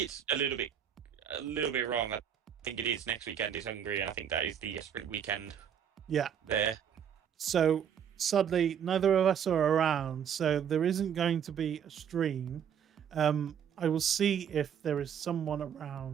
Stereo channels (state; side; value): quieter; left; 8.5 dB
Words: it's a little bit wrong. I think it is next weekend is Hungary, and I think that is the sprint weekend. Yeah. There. So sadly, neither of us are around, so there isn't going to be a stream. I will see if there is someone